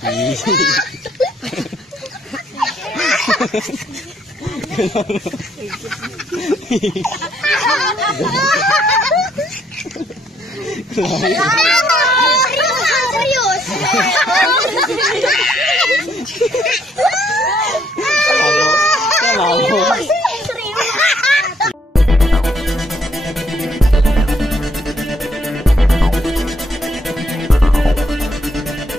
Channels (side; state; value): both; normal; correlation 0.69